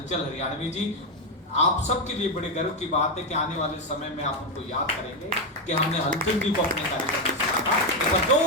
हरियाणवी जी, आप सबके लिए बड़े गर्व की बात है कि आने वाले समय में आप उनको याद करेंगे कि हमने हलचल जी को अपने कार्यक्रम में सुना था। एक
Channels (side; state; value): both; normal; correlation 0.07